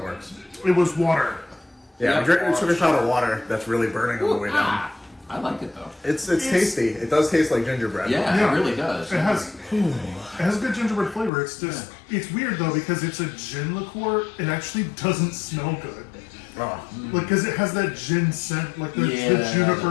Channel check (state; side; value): drops out; right; at 11.3 s